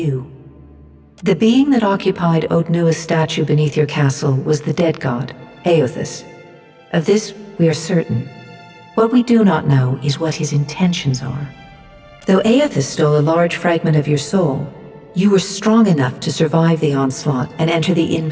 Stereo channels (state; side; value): identical; both; correlation 1.00